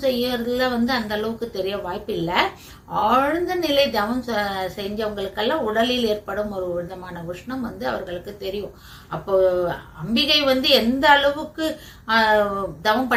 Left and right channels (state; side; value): identical; both; correlation 1.00